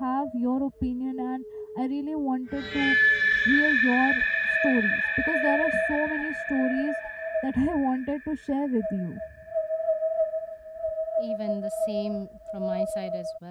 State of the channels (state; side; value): identical; both; correlation 1.00